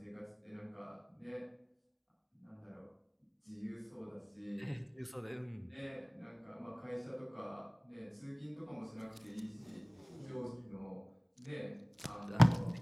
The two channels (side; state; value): both; identical; correlation 1.00